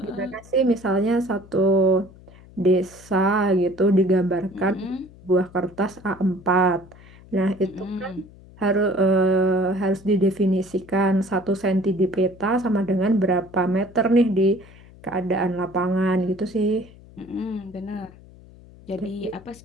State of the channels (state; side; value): noise; left; hum, 22 dB below the sound